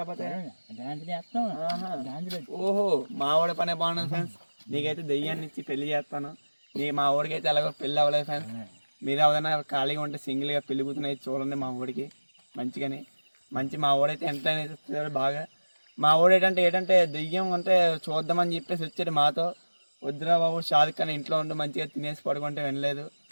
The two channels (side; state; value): both; inverted; correlation -1.00